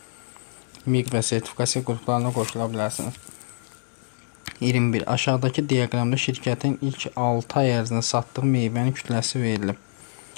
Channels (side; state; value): right; silent; digital silence